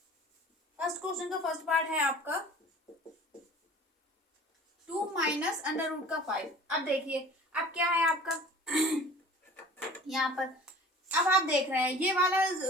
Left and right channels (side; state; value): both; normal; correlation 0.44